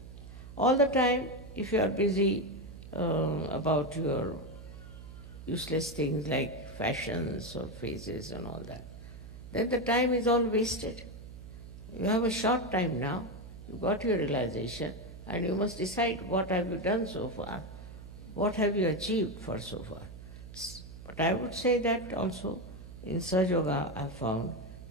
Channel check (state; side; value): noise; right; hum, 14 dB below the sound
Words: All the time if you are busy about your useless things like fashions or faces and all that, then the time is all wasted. You have a short time now, you got your realization, and you must decide what have you done so far, what have you achieved for so far. But I would say that also in Sahaja Yoga I found